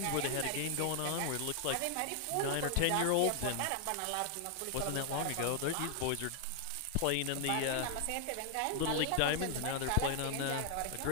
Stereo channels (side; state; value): both; different; correlation 0.00